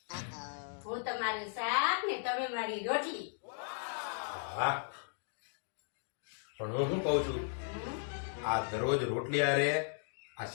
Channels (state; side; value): silent; right; digital silence